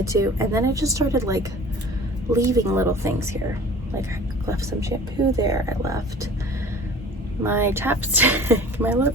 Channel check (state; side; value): normal; both; correlation 0.44